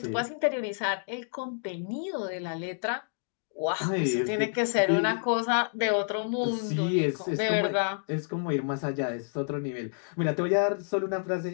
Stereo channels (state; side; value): silent; right; digital silence